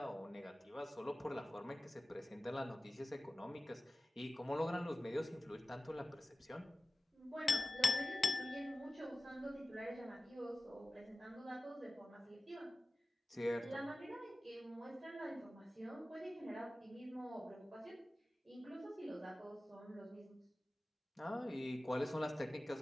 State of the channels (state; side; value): normal; both; correlation 0.96